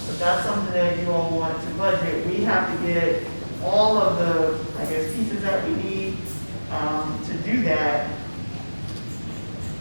If that's something that you all want to budget, we have to get all of the, I guess, pieces that we need to do that.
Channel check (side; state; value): both; inverted; correlation -1.00